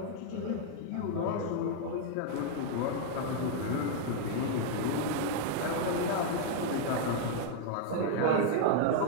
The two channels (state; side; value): different; both; correlation 0.00